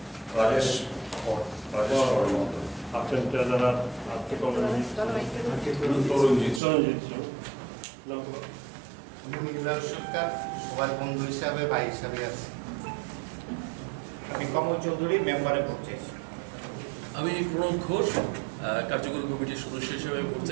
রাজেশ আছেন ট্রেজারার আর্থিক তরুণজিৎ সরকার সবার বন্ধু হিসাবে ভাই হিসাবে আছে। আমি কমল চৌধুরী মেম্বারে ভোট চাইছি। আমি প্রণব ঘোষ কার্যকরী কমিটির সদস্য হিসেবে ভোট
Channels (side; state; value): left; drops out; at 6.6 s